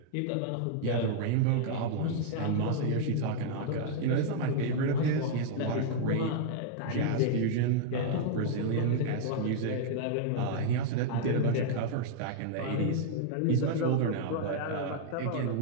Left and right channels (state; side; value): different; both; correlation -0.01